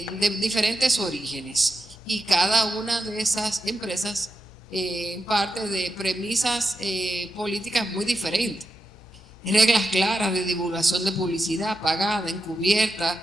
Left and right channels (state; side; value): noise; left; hum, 25 dB below the sound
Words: diferentes orígenes, y cada una de esas empresas parte de premisas políticas muy diferentes. Reglas claras de divulgación de publicidad pagada,